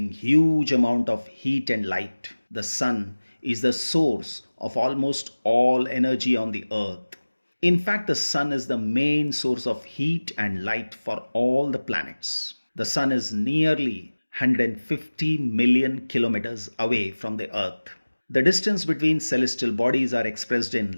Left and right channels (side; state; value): both; inverted; correlation -1.00